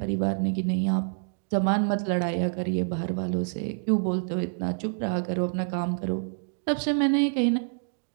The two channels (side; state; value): left; silent; digital silence